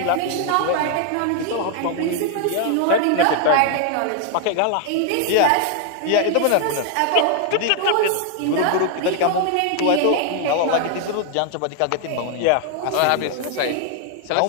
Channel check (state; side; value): different; both; correlation 0.00